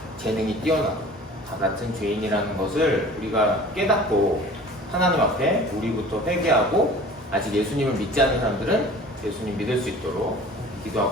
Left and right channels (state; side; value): normal; both; correlation 0.44